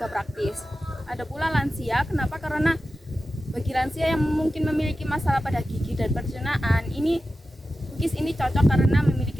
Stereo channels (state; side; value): normal; both; correlation 0.93